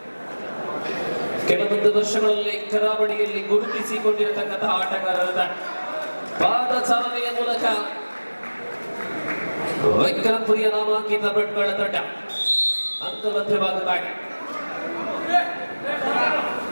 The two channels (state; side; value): inverted; both; correlation -1.00